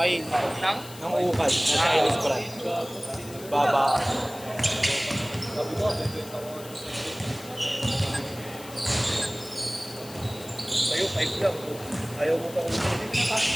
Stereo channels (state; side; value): noise; left; hiss, 16 dB below the sound